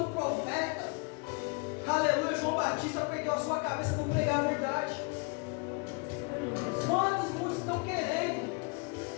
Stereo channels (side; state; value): right; quieter; 31.9 dB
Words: o profeta, aleluia, João Batista, perdeu a sua cabeça por pregar a verdade? Quantos muitos estão querendo